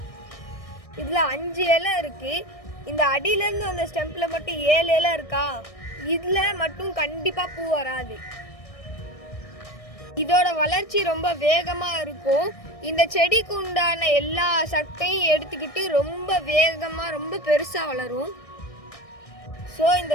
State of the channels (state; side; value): late; right; 1.6 ms